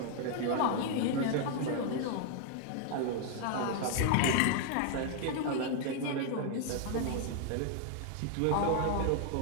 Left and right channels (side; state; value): both; different; correlation 0.00